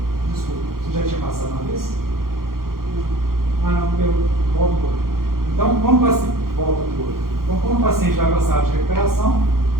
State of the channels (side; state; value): left; late; 0.92 ms